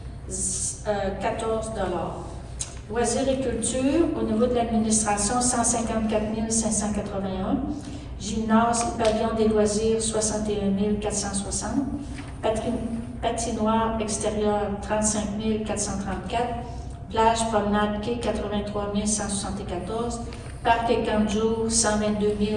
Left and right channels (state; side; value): identical; both; correlation 1.00